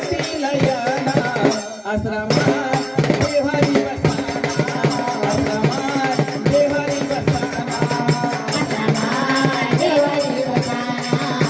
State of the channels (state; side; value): identical; both; correlation 1.00